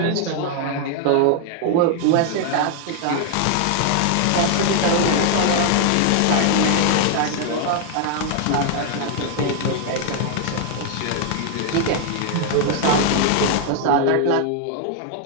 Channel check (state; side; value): different; both; correlation 0.00